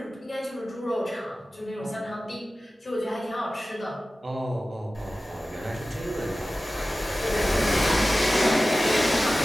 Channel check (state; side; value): normal; both; correlation 0.96